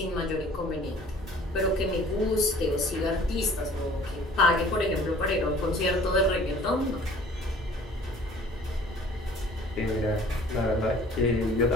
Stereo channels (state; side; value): normal; both; correlation 0.50